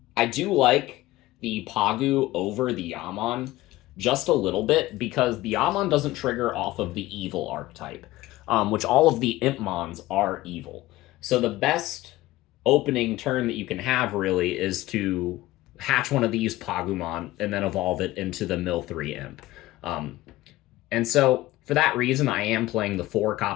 I do like the Pagu over the Yammon just a little bit, because the Yammon doesn't trigger off of the evil archetype, which all of the Impmons are evil. So the best opening turn that you can have, really, is to hatch one of these Pagumon and then evolve it into the mill 3 Imp. And so, for that reason, I am playing the 4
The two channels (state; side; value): quieter; right; 17.3 dB